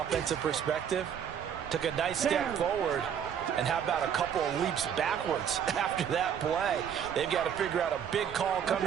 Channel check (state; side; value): quieter; left; 8.4 dB